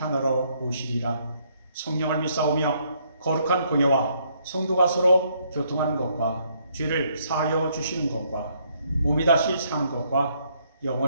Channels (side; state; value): both; inverted; correlation -0.70